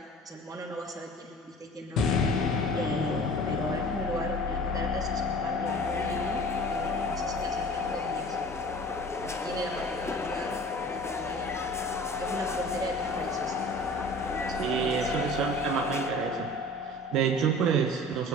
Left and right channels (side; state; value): both; normal; correlation 0.43